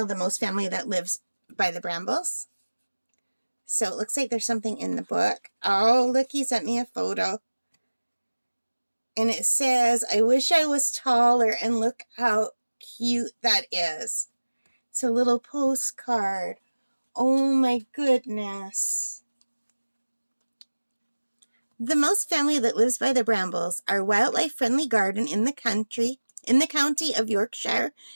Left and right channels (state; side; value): inverted; both; correlation -1.00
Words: The Mouse Family That Lives by the Brambles. So it looks like there's something in the book. Oh, look, he sent me a photo. And it says, "I wish I was taller," and look how cute that is. It's a little postcard. Oh my goodness. The Mouse Family That Lives by the Brambles, our wildlife-friendly garden in the county of Yorkshire,